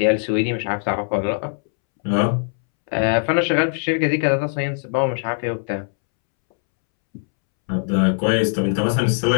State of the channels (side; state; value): right; silent; 65 dB below the other